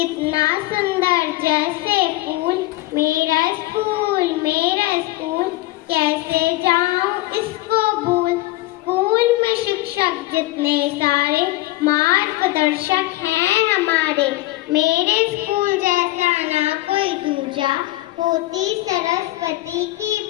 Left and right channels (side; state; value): right; quieter; 18.5 dB